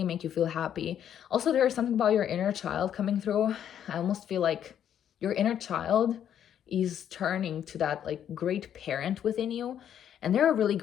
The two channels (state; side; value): quieter; right; 9.7 dB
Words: make you feel happy. Also, there is something about your inner child coming through. I almost feel like your inner child is turning to that, like, great parent within you, and they're really